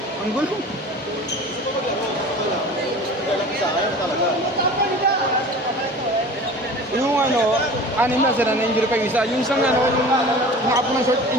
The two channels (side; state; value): both; normal; correlation 0.39